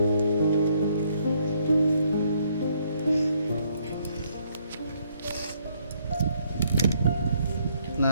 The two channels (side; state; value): both; inverted; correlation -0.69